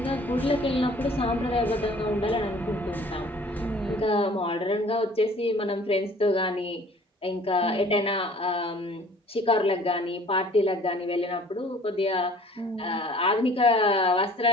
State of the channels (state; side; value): normal; both; correlation 0.52